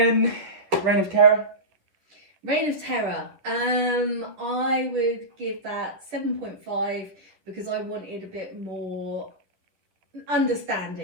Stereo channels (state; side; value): late; left; 10 ms